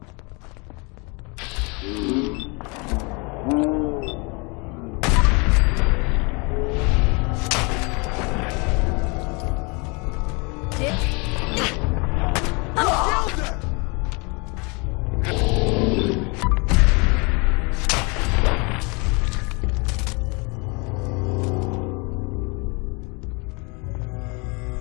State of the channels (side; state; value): right; quieter; 30.4 dB